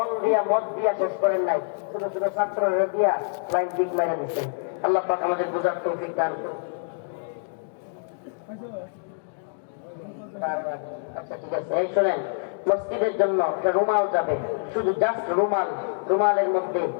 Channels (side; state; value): right; silent; digital silence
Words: দিয়া, মত দিয়া শেষ করেন নাই, ছোট ছোট ছাত্ররা দিয়া লাইন দিক মেরে দিচ্ছেন। আল্লাহ পাক আমাদের বোঝার তৌফিক দান করুন। আচ্ছা ঠিক আছে, এই শোনেন, মসজিদের জন্য একটা রুমাল যাবে, শুধু জাস্ট রুমাল। রুমালের মধ্যে